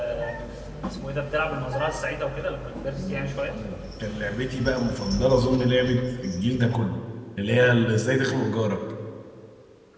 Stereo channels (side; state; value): both; identical; correlation 1.00